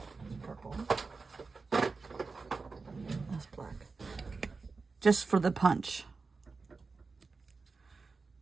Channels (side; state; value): left; quieter; 4.3 dB